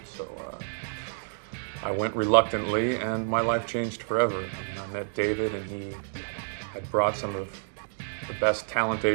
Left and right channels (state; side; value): silent; left; digital silence